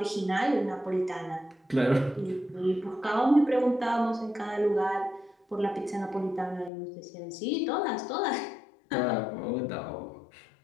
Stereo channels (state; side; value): drops out; right; at 6.7 s